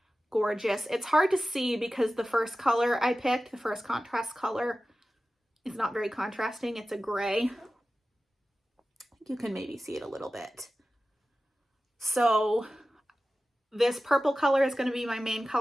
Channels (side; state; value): both; normal; correlation 0.95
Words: gorgeous. It's hard to see because the first color I picked, the first contrast color, is not very contrasting. It's a gray. You can maybe see it a little bit. So this purple color is going to be my main